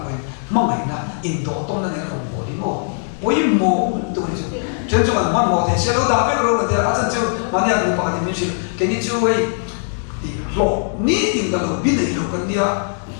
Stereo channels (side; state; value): right; silent; digital silence